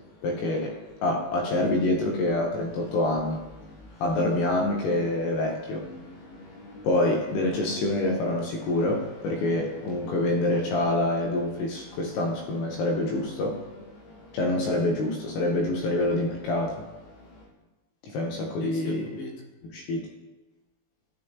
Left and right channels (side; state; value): right; late; 19 ms